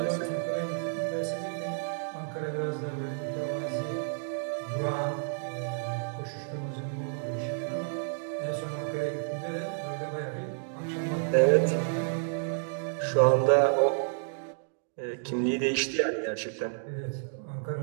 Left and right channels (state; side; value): silent; left; digital silence